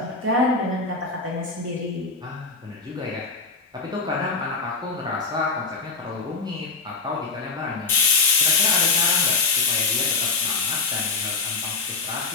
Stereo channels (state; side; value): quieter; right; 4.3 dB